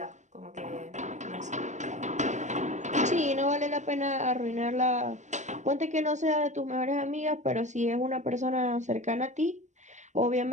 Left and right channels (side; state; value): left; late; 0.34 ms